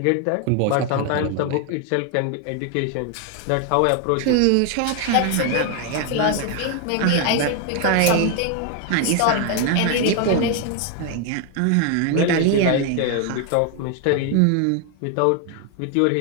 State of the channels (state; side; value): different; both; correlation 0.01